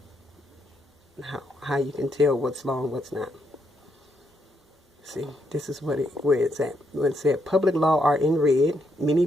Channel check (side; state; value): both; normal; correlation 0.78